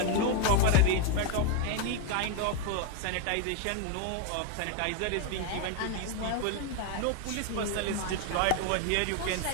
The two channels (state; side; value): different; both; correlation 0.01